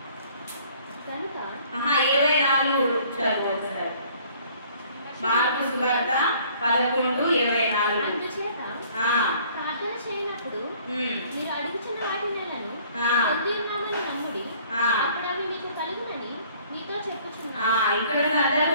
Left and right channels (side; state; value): both; inverted; correlation -0.56